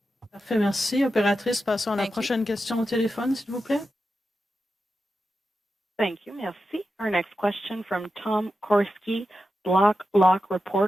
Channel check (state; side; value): normal; both; correlation 0.90